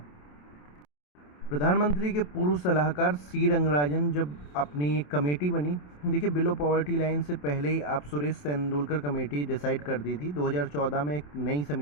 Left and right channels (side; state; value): right; late; 27 ms